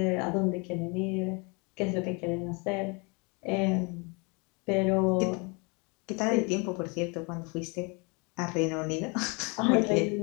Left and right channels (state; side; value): quieter; right; 31.0 dB